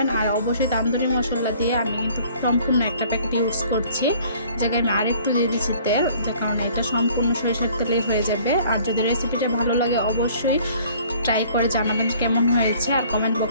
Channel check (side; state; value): both; inverted; correlation -0.55